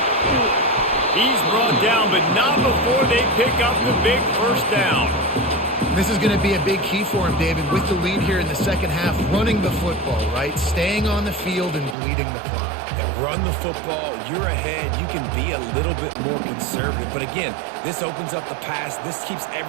He's brought down, but not before they pick up the big first down. This is going to be a big key for him, David, with the lead here in the second half, running the football, right? Staying on the field and bleeding the clock. And run the football, you're ahead, you can be a little bit more conservative. But again, this opens up the pass. This keeps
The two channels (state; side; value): drops out; left; at 12.0 s